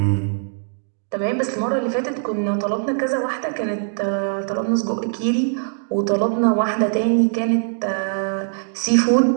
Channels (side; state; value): left; silent; digital silence